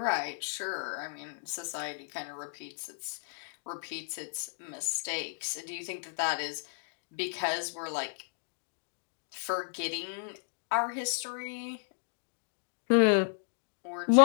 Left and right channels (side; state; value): right; silent; digital silence